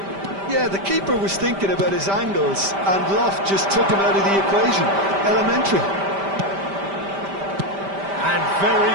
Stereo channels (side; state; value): left; late; 5.1 ms